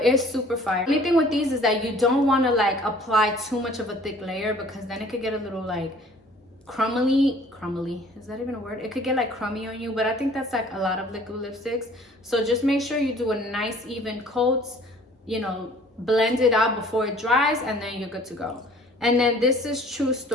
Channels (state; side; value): normal; both; correlation 0.53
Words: it's super fire. The only thing with these is that you don't want to like apply too much of a thick layer, because then it could get a little like crumbly, is that even a word? It could get like crummy on you, but I think that's like a lot of liquid lipsticks. So just make sure you do a nice even coats you know, blend it out before it dries, and then you're good to go. And then this is True